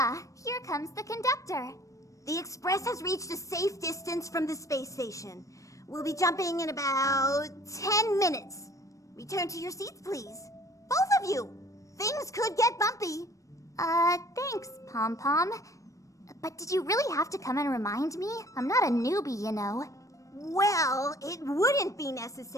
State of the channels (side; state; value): right; late; 0.16 ms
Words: here comes the conductor. The Express has reached a safe distance from the space station. We'll be jumping in about 10 minutes. Return to your seats, please. Both of you! Things could get bumpy. Thanks, Pom Pom. But did you really have to come and remind me? I'm not a newbie, you know. Well, it wouldn't be